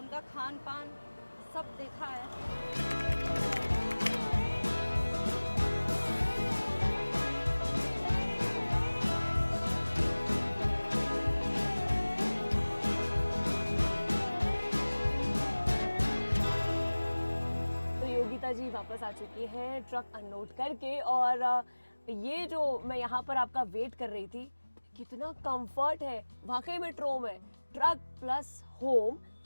खान पान सब देखा है। तो योगिता जी वापस आ चुकी हैं ट्रक अनलोड करके, और ये जो मैं यहाँ पर आपका वेट कर रही थी, कितना कंफर्ट है, वाकई में ट्रोम है, ट्रक प्लस होम।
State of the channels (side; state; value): both; inverted; correlation -1.00